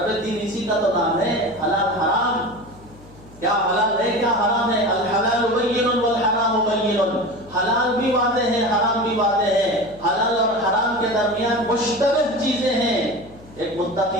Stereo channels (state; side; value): noise; left; hum, 22 dB below the sound